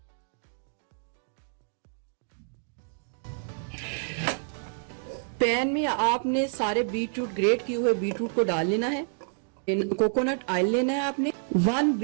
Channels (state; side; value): silent; left; digital silence